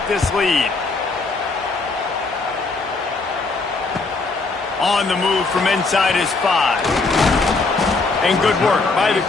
this lead. On the move from inside is 5. And good work by the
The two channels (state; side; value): quieter; right; 3.8 dB